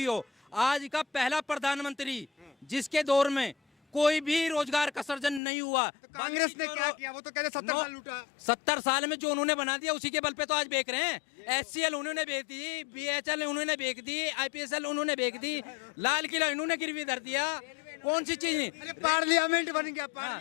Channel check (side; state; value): right; drops out; at 5.4 s